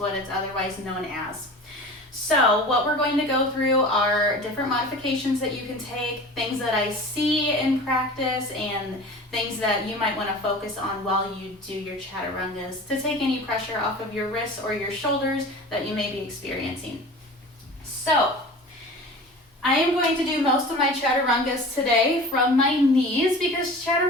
it's otherwise known as. So what we're going to go through are different modifications that you can take, things that I see in practice, and things that you might want to focus on while you do your Chaturangas to take any pressure off of your wrists or your shoulders that you may be experiencing. So I am going to do most of my Chaturangas today from my knees because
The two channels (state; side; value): normal; both; correlation 0.38